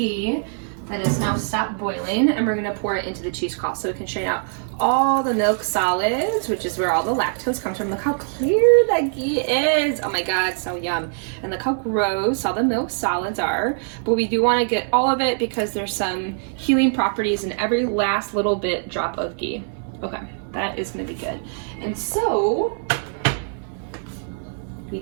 that is now stopped boiling, and we're going to pour it into the cheesecloth so we can strain out all the milk solids, which is where all the lactose comes from. Look how clear that ghee is. Oh my god, so yum. And look how gross all the milk solids are. But we do want to get all of it because there's some healing properties in every last little bit drop of ghee. Okay, that is going to be good. And so we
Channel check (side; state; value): left; silent; 64 dB below the other